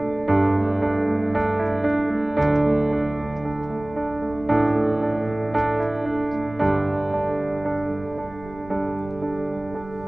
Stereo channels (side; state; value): right; noise; rumble, 19 dB below the sound